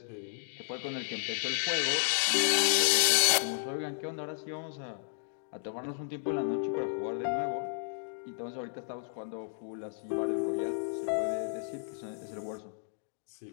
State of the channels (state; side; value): silent; right; digital silence